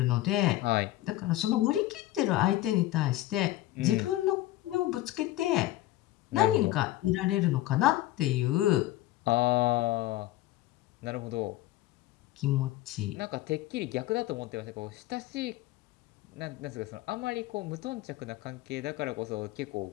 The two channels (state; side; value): quieter; right; 15.8 dB